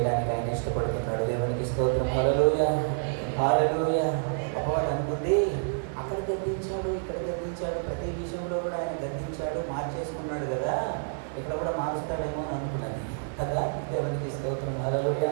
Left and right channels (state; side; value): silent; left; digital silence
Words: ఆయన ఇష్టపడుతున్నాడు. దేవునికి స్తోత్రం. హల్లెలూయా, హల్లెలూయా. అపవాది అనుకుంది అక్కడ గద్దించాడు, ఇక్కడ గద్దించాడు, ప్రతి విషయంలో కూడా ఆయన గద్దించాడు, మార్చేసుకున్నాడు కదా, ఇక్కడ కూడా మారుస్తాడేమో అని అనుకున్నది కదా. దేవునికి స్తోత్రం. హల్లెలూయా,